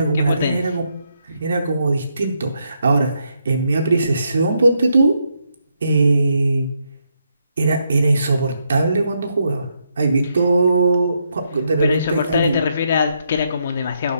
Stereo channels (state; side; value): inverted; both; correlation -0.79